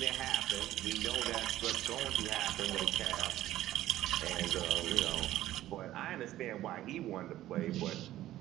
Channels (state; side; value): quieter; left; 14.2 dB